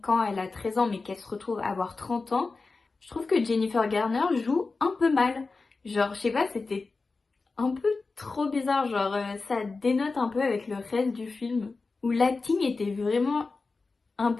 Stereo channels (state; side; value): quieter; right; 4.0 dB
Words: elle a 13 ans mais qu'elle se retrouve à avoir 30 ans, je trouve que Jennifer Garner joue un peu mal. Genre je sais pas, c'était un peu trop bizarre, genre ça dénote un peu avec le reste du film, où l'acting était vraiment un